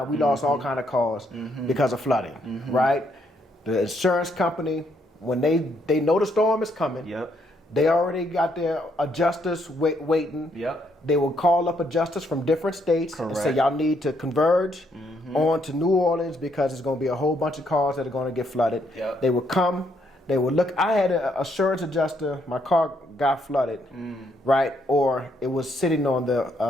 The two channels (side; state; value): both; normal; correlation 0.73